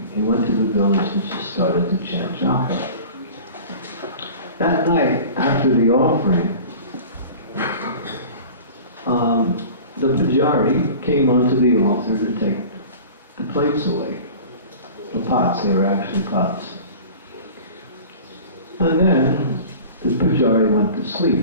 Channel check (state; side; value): inverted; both; correlation -0.40